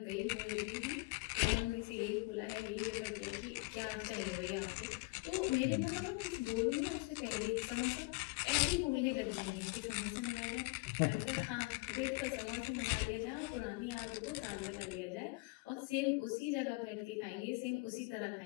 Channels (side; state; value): right; quieter; 25.0 dB